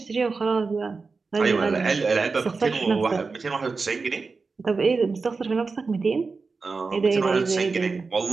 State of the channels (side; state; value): left; quieter; 4.4 dB